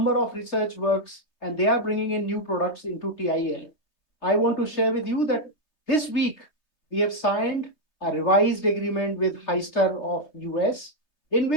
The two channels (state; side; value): late; right; 3.2 ms